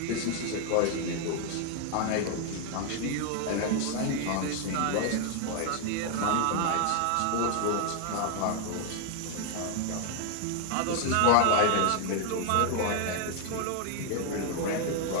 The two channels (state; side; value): different; both; correlation 0.00